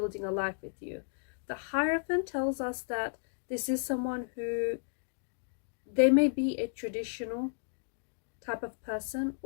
a life with you. The Hierophant tells us that this is someone who They may be a traditional type of person,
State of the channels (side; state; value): right; silent; digital silence